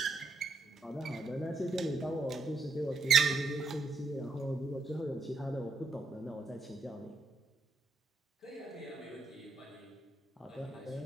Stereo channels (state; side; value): quieter; left; 3.5 dB